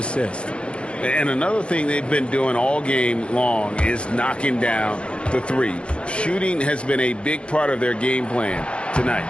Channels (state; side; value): late; right; 0.058 ms